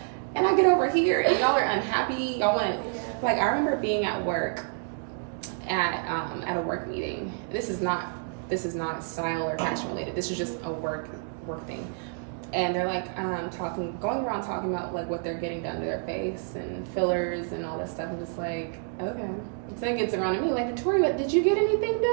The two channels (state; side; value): silent; left; 59 dB below the other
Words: And I get over here and y'all are unhappy. Y'all want to, like, I remember being at work at a work meeting. This is not this is not style or fashion related. This is just a work thing. And they're like going around talking about like what they're getting done to their face and fillers and all this stuff. I'm just like, okay. So it gets around to me like, Victoria, did you get anything